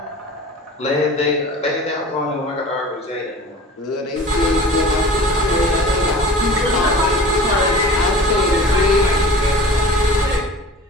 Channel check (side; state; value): both; normal; correlation 0.41